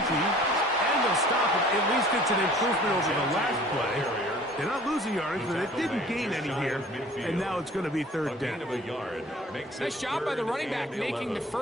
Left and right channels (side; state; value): both; normal; correlation 0.50